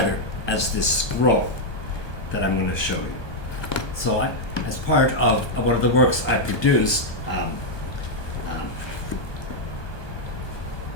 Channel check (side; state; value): right; late; 1.2 ms